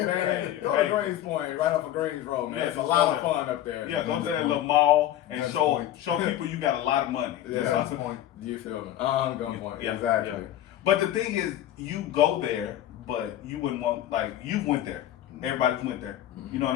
man, go to Greens Point, right off of Greens Road, man. Yeah, it's a lot of fun up there. yeah, go to that little mall and show people you got a lot of money. Yeah, That's the point. Do you feel me? On gunpoint. Yeah, Exactly. yeah. But the thing is, you go there, but you wouldn't want, like, you went there. Everybody's went there. You know what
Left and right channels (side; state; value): right; quieter; 12.4 dB